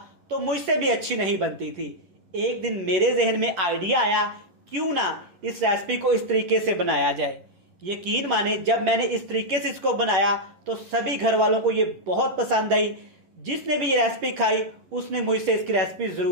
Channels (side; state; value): left; late; 10 ms